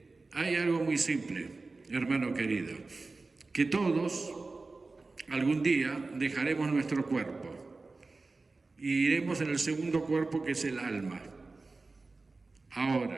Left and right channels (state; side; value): quieter; left; 3.6 dB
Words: hay algo muy simple, hermano querido, que todos algún día dejaremos nuestro cuerpo y iremos en el segundo cuerpo, que es el alma.